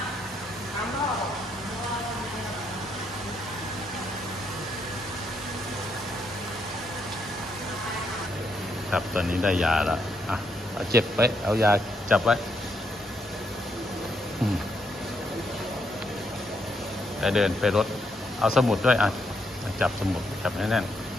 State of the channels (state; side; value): normal; both; correlation 0.77